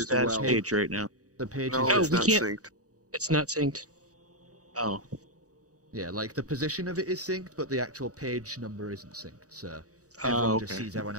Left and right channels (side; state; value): left; late; 0.66 ms